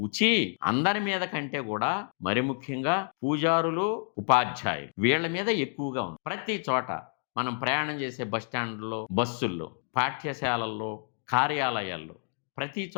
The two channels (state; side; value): silent; right; 58 dB below the other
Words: అందరి మీద కంటే కూడా మరి ముఖ్యంగా పూజారులు, ఉపాధ్యాయులు, వీళ్ళ మీద ఎక్కువగా ఉంది. ప్రతి చోట మనం ప్రయాణం చేసే బస్ స్టాండ్లో, బస్సుల్లో, పాఠ్యశాలల్లో, కార్యాలయాల్లో, ప్రతి